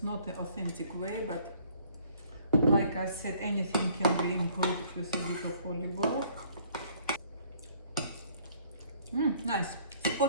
not the authentic way, but like I said, anything can be improved with a bit of olive oil. Nice,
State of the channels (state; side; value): inverted; both; correlation -0.60